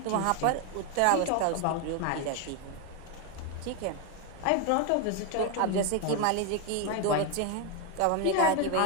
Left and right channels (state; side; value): different; both; correlation 0.01